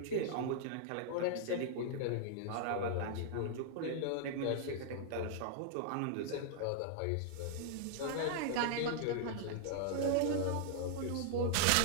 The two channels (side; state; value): both; different; correlation -0.01